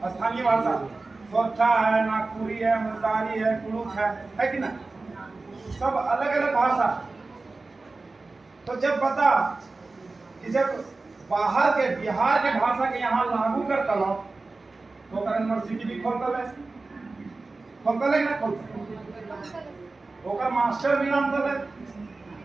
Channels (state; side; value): quieter; left; 3.6 dB